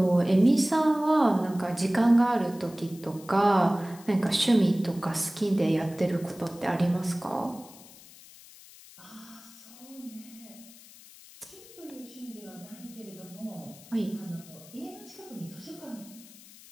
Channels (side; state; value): left; noise; hiss, 21 dB below the sound